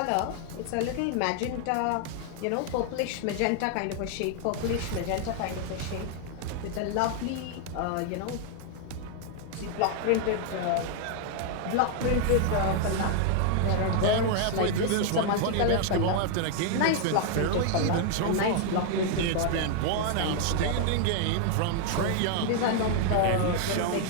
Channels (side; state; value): both; different; correlation 0.00